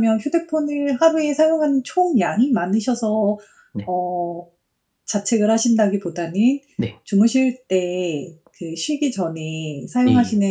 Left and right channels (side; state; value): both; identical; correlation 1.00